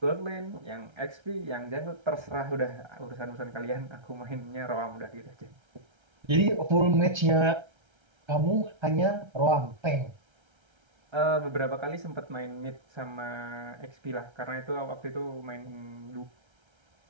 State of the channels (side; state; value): left; late; 1.3 ms